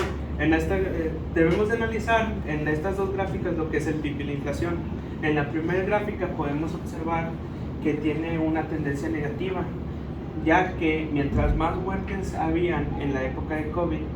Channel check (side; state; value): both; identical; correlation 1.00